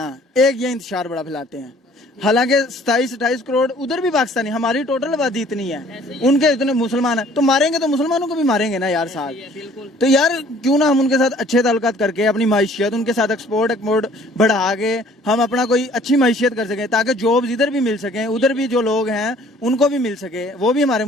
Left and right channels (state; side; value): normal; both; correlation 0.55